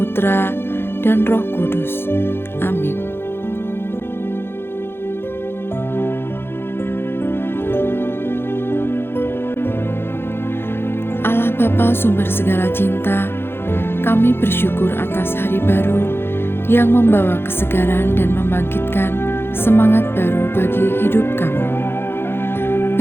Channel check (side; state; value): right; late; 0.11 ms